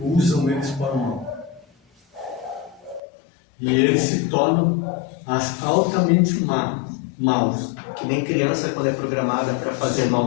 usam eles para o mal. E eles se tornam altamente maus. Que nem criança quando é programada para fazer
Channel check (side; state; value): right; drops out; at 3.0 s